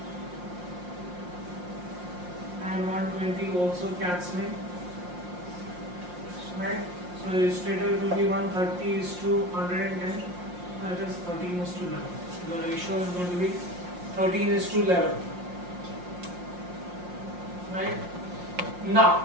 and 120 also cancelling, right? So straight away it will be 130 is to 110. That is 13 is to 11. The ratio is going to be 13 is to 11. Right?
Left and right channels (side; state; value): left; late; 5.6 ms